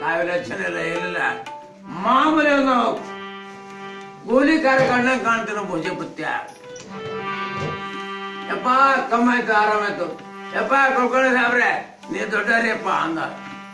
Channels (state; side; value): identical; both; correlation 1.00